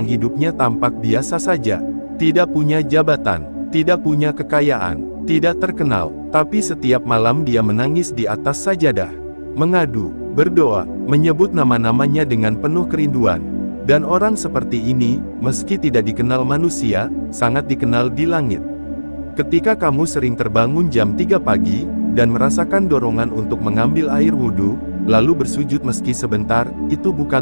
hidupnya tampak biasa saja. tidak punya jabatan, tidak punya kekayaan, tidak terkenal, tapi setiap malam dia menangis di atas sajadah, mengadu, berdoa, menyebut nama-namanya dengan penuh kerinduan. Dan orang seperti ini, meski tidak dikenal manusia, sangat dikenal di langit. Ketika kamu sering terbangun jam 3 pagi, dan merasakan dorongan untuk mengambil air wudhu, lalu bersujud meski sebentar, itu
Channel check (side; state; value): both; inverted; correlation -1.00